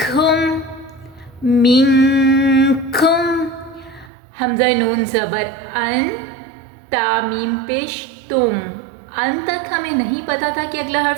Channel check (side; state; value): left; drops out; at 4.1 s